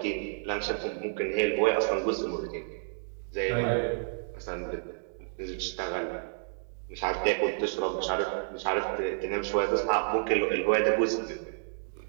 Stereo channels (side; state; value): left; silent; digital silence